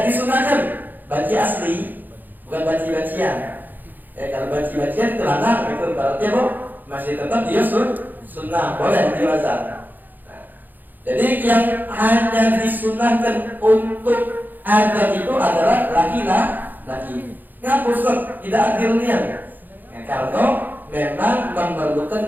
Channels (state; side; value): late; left; 0.087 ms